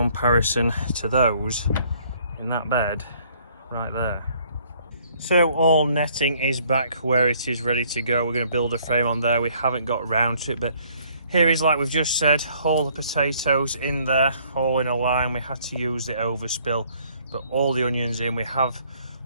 to those in that bed right there. So all netting is back where it is ready to go. We're going to build a frame on there. We haven't got round to it, but here is, like we've just said, all the potatoes in there, all in a line. We had to use the overspill, but all the onions in. We have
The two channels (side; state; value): both; inverted; correlation -0.62